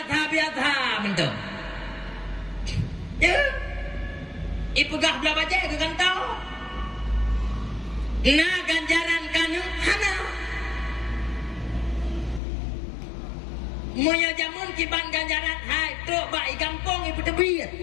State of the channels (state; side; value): drops out; right; at 12.4 s